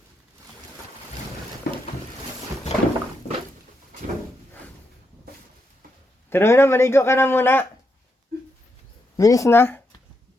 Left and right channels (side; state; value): both; normal; correlation 0.82